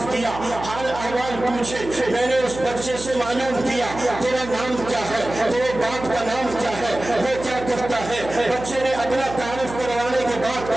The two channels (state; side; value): noise; right; hum, 12 dB below the sound